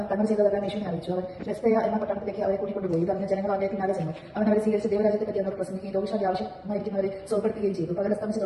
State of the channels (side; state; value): both; identical; correlation 1.00